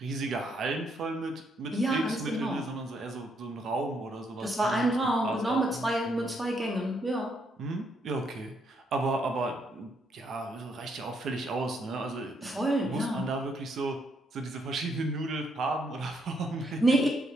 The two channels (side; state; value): both; normal; correlation 0.74